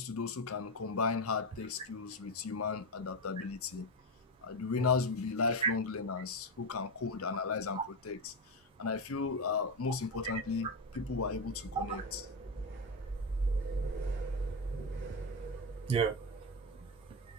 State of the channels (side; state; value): both; normal; correlation 0.12